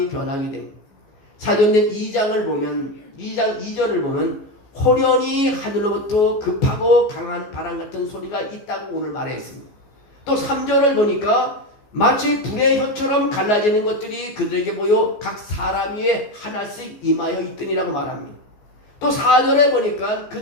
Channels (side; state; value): right; late; 14 ms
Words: 변하게 됩니다. 사도행전 2장을 보면 2장 2절을 보면 호련히 하늘로부터 급하고 강한 바람 같은 소리가 있다고 오늘 말했습니다. 또 3절을 보니까 마치 불의 혀처럼 갈라지는 것들이 그들에게 보여 각 사람 위에 하나씩 임하여 있더니라고 말합니다. 또 4절에 보니까